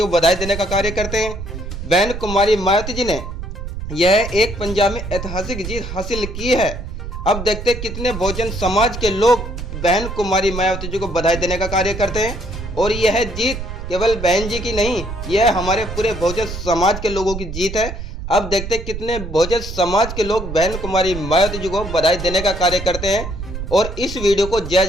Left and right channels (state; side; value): noise; right; rumble, 8 dB below the sound